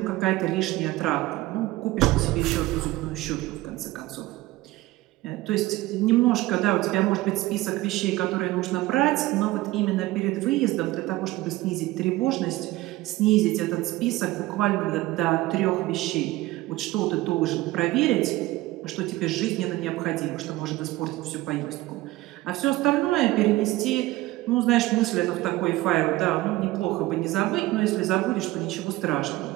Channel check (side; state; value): left; quieter; 18.1 dB